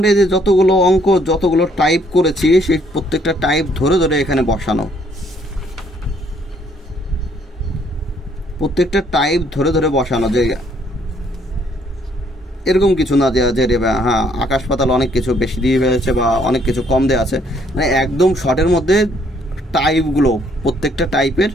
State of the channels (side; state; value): both; normal; correlation 0.66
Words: যে যতগুলো অঙ্ক, যতগুলো টাইপ করেছি, সেই প্রত্যেকটা টাইপ ধরে ধরে এখানে বসানো, প্রত্যেকটা টাইপ ধরে ধরে বসানো, যে এরকম কিছু না যে হ্যাঁ আকাশ পাতাল অনেক কিছু বেশি দিয়ে ফেলেছে বা অনেক কিছু কম দেওয়া আছে, মানে একদম শর্টের মধ্যে টাইপগুলো প্রত্যেকটা টাইপের